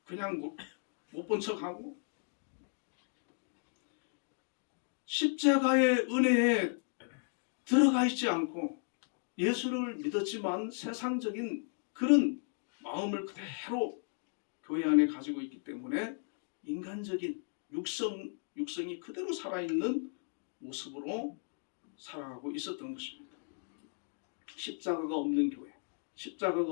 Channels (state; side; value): silent; right; 54 dB below the other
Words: 그냥 못 본 척하고 십자가의 은혜에 들어가 있지 않고 예수를 믿었지만 세상적인 그런 마음을 그대로 교회 안에 가지고 있기 때문에 인간적인 육성이 그대로 살아있는 모습으로 살아가고 있었던 것입니다. 십자가가 없는 교회, 십자가가